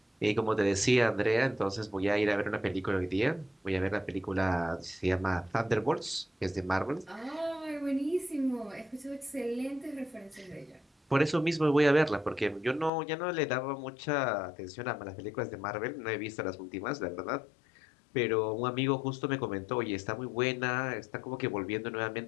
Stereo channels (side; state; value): right; drops out; at 12.9 s